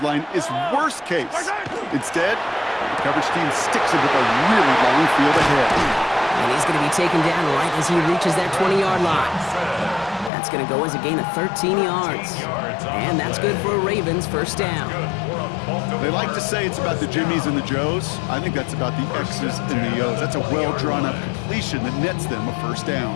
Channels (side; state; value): right; drops out; at 10.3 s